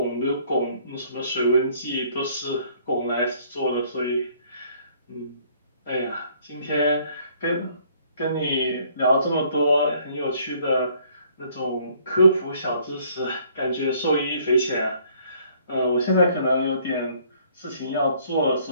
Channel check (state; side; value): inverted; both; correlation -0.61